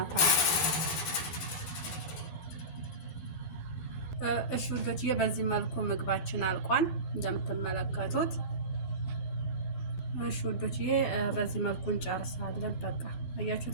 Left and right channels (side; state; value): right; late; 11 ms